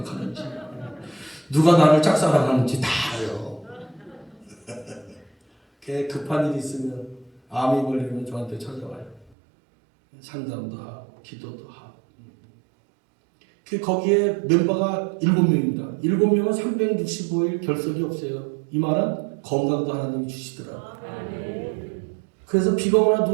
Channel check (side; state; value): left; drops out; at 9.3 s